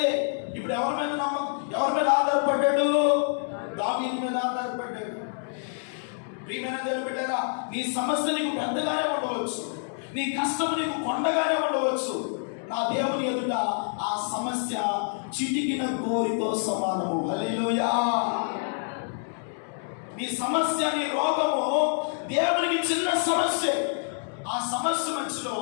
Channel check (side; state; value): right; silent; 60 dB below the other